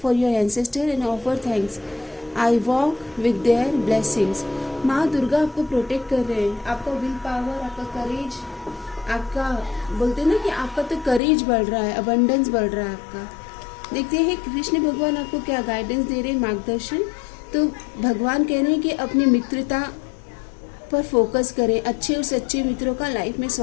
for your ancestor and offer thanks. I walk with their blessings. माँ दुर्गा आपको प्रोटेक्ट कर रहे हैं। आपका विल पावर, आपका करेज, आपका बोलते ना कि आपका तो करेज बढ़ रहा है, अबंडेंस बढ़ रहा है आपका। देखते हैं कृष्ण भगवान आपको क्या गाइडेंस दे रहे हैं, मार्गदर्शन। तो भगवान कह रहे हैं कि अपनी मित्रता पर फोकस करें, अच्छे और सच्चे मित्रों का लाइफ में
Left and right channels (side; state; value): right; drops out; at 11.2 s